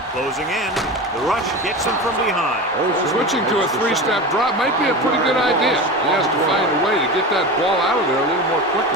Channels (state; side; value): normal; both; correlation 0.27